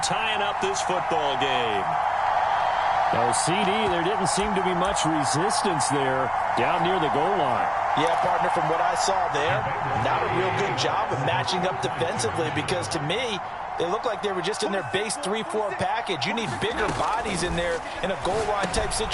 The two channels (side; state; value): both; identical; correlation 1.00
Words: tying up this football game. Oh, CD, there didn't seem to be much resistance there down near the goal line. Yeah, partner, from what I saw there, not a real good job of matching up defensively, because to me, they look like they were just in their base 3-4 package. You need bigger bodies in there in a goal line type